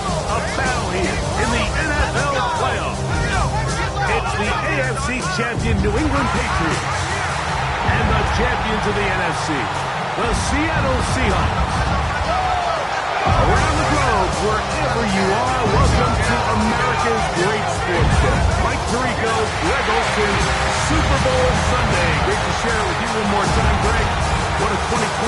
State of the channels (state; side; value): identical; both; correlation 1.00